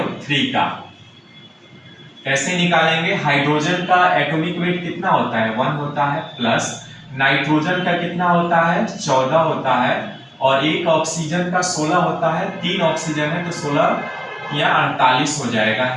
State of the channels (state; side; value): identical; both; correlation 1.00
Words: का कैसे निकालेंगे, हाइड्रोजन का एटॉमिक वेट कितना होता है, 1 होता है, प्लस नाइट्रोजन का कितना होता है, 14 होता है, और एक ऑक्सीजन का 16 होता है। 3 ऑक्सीजन है तो 16 या 48 हो जाएगा,